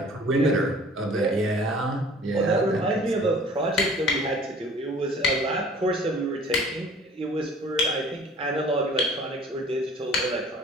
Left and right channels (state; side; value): normal; both; correlation 0.50